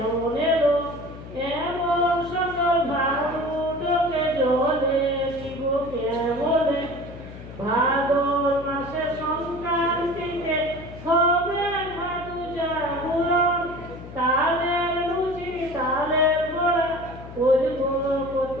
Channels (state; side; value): noise; left; hum, 14 dB below the sound